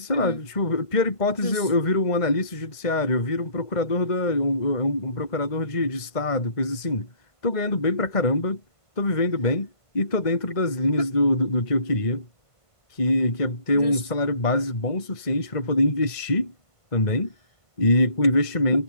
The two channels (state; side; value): late; right; 1.5 ms